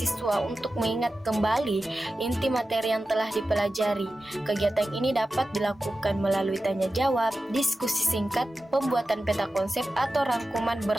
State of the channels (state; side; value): normal; both; correlation 0.93